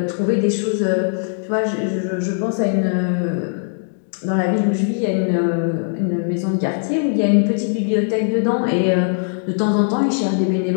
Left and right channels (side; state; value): right; silent; digital silence